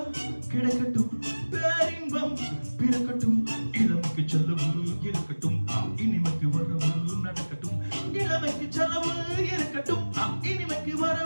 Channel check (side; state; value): both; inverted; correlation -1.00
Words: கிடைக்கட்டும் பேரின்பம் பிறக்கட்டும் இளமைக்கு செலவு இருக்கட்டும் இனிமைக்கு வரவு நடக்கட்டும் இளமைக்கு செலவு இருக்கட்டும் இனிமைக்கு